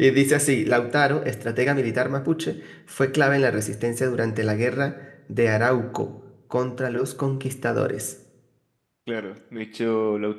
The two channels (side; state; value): both; identical; correlation 1.00